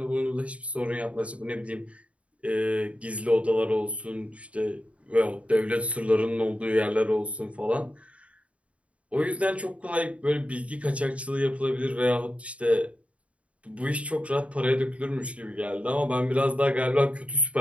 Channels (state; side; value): late; left; 0.064 ms